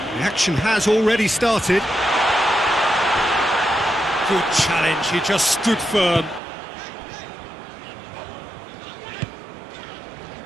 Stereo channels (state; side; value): drops out; left; at 6.4 s